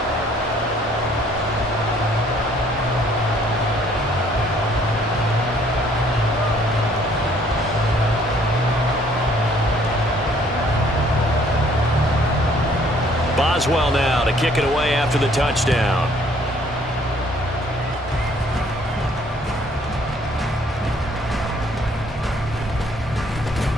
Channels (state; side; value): normal; both; correlation 0.61